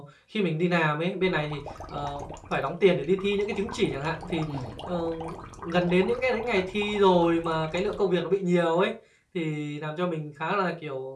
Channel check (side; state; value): both; identical; correlation 1.00